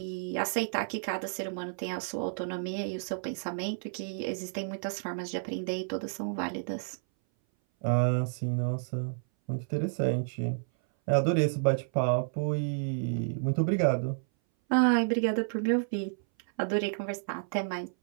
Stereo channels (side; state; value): left; silent; 57 dB below the other